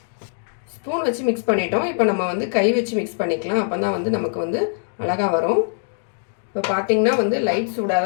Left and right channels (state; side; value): silent; right; digital silence